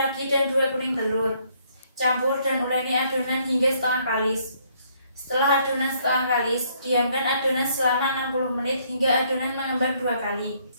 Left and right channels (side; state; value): both; inverted; correlation -0.67